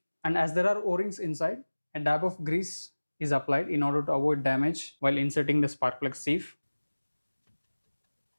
and as there are O-rings inside, a dab of grease is applied in order to avoid damage while inserting the spark plug sieve.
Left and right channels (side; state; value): both; inverted; correlation -1.00